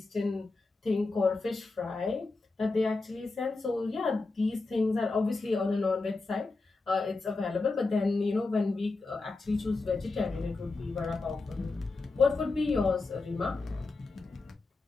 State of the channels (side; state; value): right; quieter; 3.6 dB